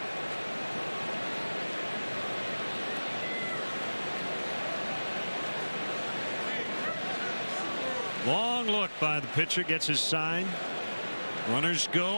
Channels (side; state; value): both; inverted; correlation -1.00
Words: look by the pitcher, gets his sign. Runners go